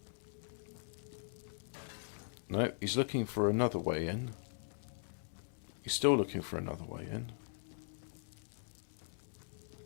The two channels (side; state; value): right; silent; 51 dB below the other